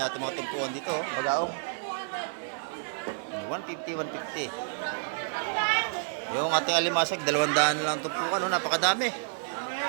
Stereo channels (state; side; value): silent; left; digital silence